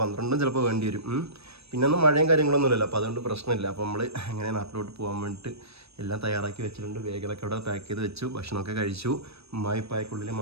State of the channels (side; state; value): left; late; 0.78 ms